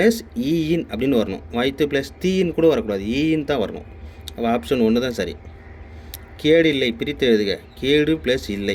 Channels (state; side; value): identical; both; correlation 1.00